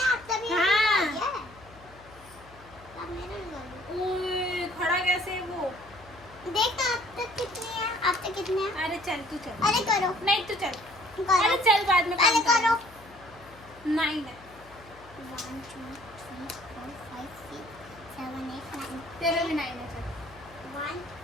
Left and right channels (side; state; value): left; noise; hum, 23 dB below the sound